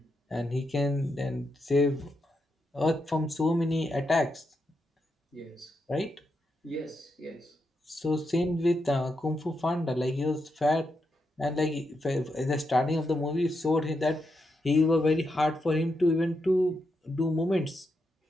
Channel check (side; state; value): both; normal; correlation 0.83